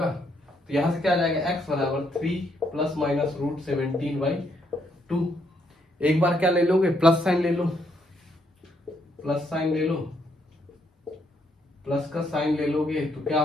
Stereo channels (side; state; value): both; normal; correlation 0.74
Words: तो यहां से क्या आ जाएगा, x बराबर 3 प्लस माइनस रूट 17/2। एक बार क्या ले लोगे, प्लस साइन ले लो, प्लस साइन ले लो, प्लस का साइन ले लोगे तो क्या